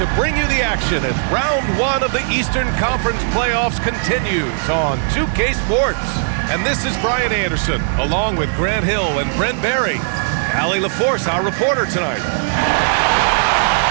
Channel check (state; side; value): silent; left; digital silence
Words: to bring you the action as round one of the Eastern Conference playoffs continues on 2K Sports. And this is Brian Anderson, along with Grant Hill and Brent Barry. Allie LaForce, our reporter tonight.